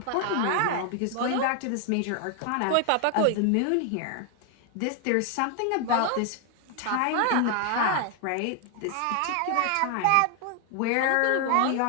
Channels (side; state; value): both; different; correlation 0.00